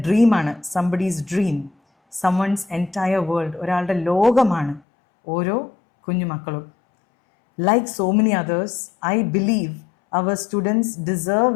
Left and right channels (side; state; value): right; drops out; at 4.8 s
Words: ഡ്രീമാണ്. Somebody's dream, someone's entire world. ഒരാളുടെ ലോകമാണ് ഓരോ കുഞ്ഞുമക്കളും. Like so many others, I believe our students deserve